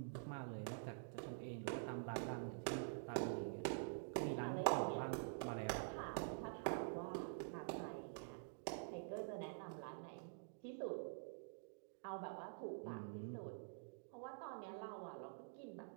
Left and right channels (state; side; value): silent; left; digital silence